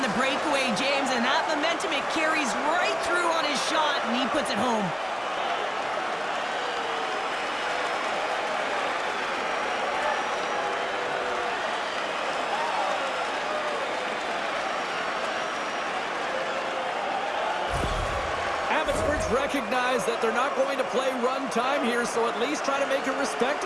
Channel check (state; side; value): identical; both; correlation 1.00